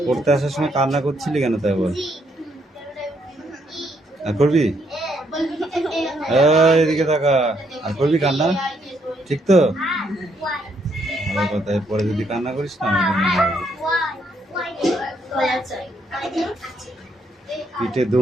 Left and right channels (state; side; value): normal; both; correlation 0.73